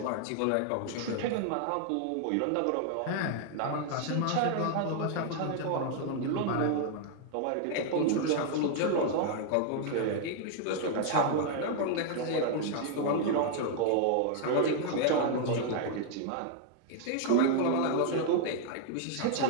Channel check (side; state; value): both; different; correlation 0.00